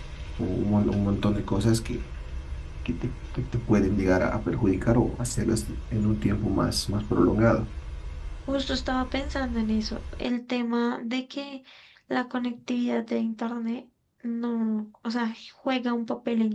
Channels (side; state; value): both; identical; correlation 1.00